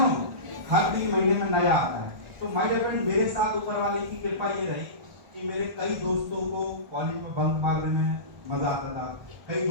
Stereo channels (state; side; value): late; left; 1.4 ms